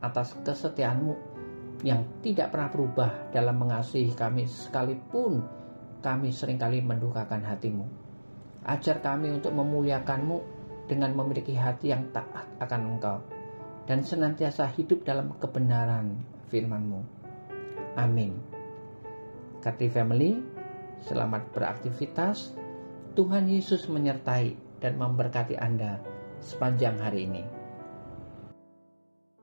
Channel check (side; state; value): both; inverted; correlation -1.00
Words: atas kesetiaan-Mu yang tidak pernah berubah dalam mengasihi kami sekalipun kami seringkali mendukakan hati-Mu. Ajar kami untuk memuliakan-Mu dengan memiliki hati yang taat akan Engkau dan senantiasa hidup dalam kebenaran firman-Mu. Amin. Godly Family, selamat beraktivitas. Tuhan Yesus menyertai dan memberkati Anda sepanjang hari ini.